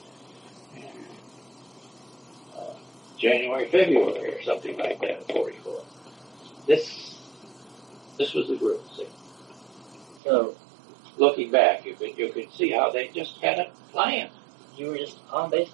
January, February, or something like that in '44. This was the group. See? So, looking back, you could see how they just had a plan. You were just on base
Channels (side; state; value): left; drops out; at 10.2 s